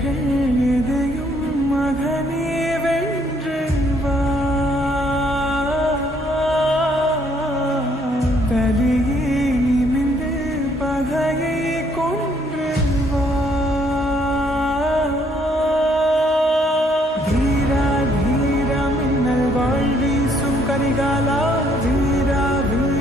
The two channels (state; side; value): normal; both; correlation 0.67